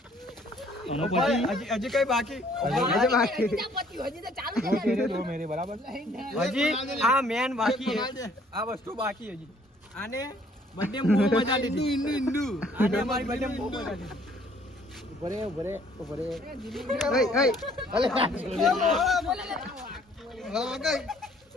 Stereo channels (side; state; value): both; normal; correlation 0.61